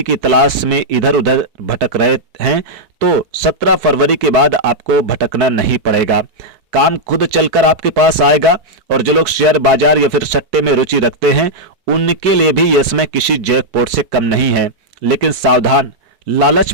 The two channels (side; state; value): left; late; 4.6 ms